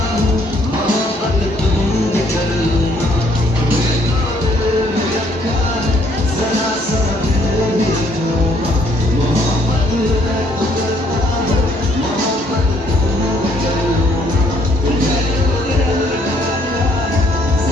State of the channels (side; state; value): both; normal; correlation 0.66